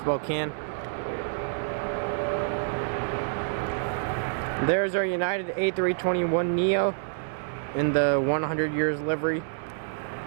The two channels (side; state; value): left; silent; digital silence